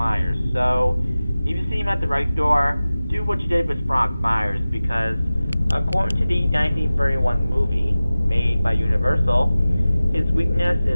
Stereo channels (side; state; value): both; inverted; correlation -0.97